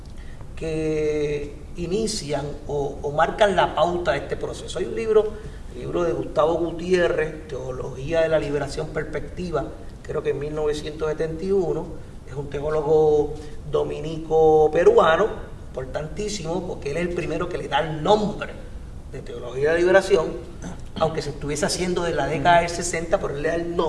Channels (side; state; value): both; identical; correlation 1.00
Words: que inician o marcan la pauta de este proceso. Hay un libro de Gustavo Gutiérrez, Teología de la Liberación Perspectiva, creo que en 1971, es un teólogo dominico peruano, importantísimo, porque él es el primero que le da el nombre de Teología de la Liberación, aunque se estuviese haciendo de la década del 60, pero él le da el